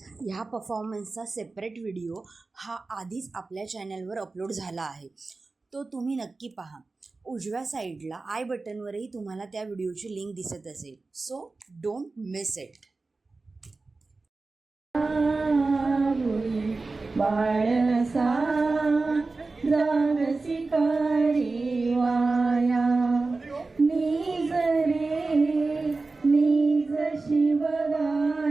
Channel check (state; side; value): quieter; left; 3.6 dB